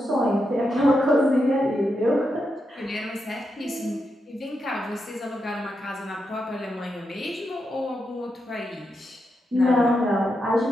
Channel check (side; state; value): both; normal; correlation 0.85